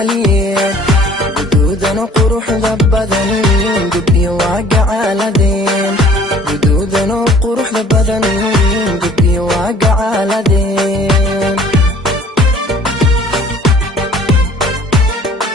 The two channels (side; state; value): both; normal; correlation 0.53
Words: guduudan quruxda badan gabdhiyo waa gacaaladeen guduudan quruxda badan gabdhiyo waa gacaaladeen